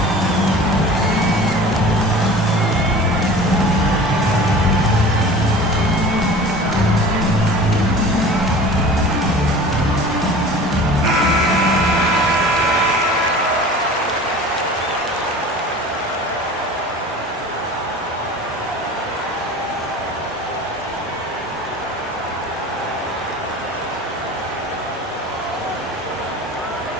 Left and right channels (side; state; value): both; normal; correlation 0.40